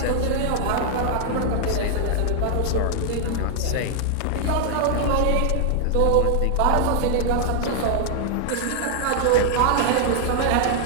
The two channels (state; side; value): different; both; correlation 0.00